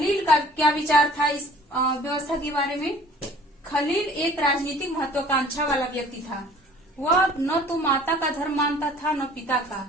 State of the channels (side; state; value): both; normal; correlation 0.51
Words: का क्या विचार था इस व्यवस्था के बारे में? खलील एक राजनीतिक महत्वाकांक्षा वाला व्यक्ति था। वह न तो माता का धर्म मानता था न पिता